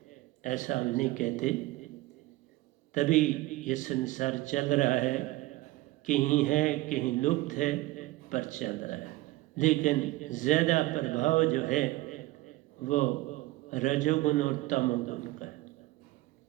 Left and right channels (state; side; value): quieter; left; 18.5 dB